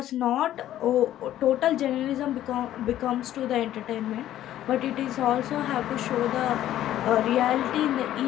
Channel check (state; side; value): quieter; right; 12.6 dB